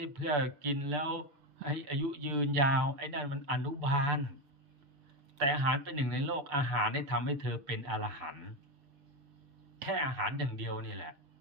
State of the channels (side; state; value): left; late; 7.2 ms